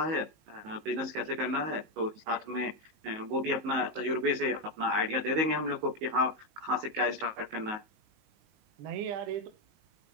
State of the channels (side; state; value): left; late; 19 ms